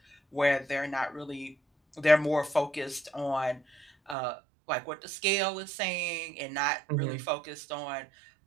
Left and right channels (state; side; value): drops out; left; at 4.2 s